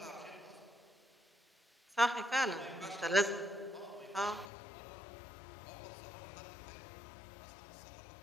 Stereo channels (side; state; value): right; drops out; at 4.5 s